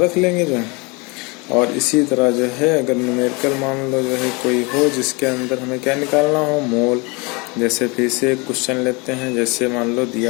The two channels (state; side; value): quieter; right; 28.4 dB